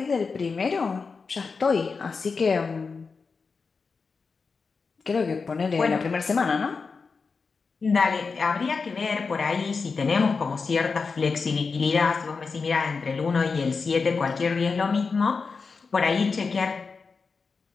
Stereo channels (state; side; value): quieter; right; 4.8 dB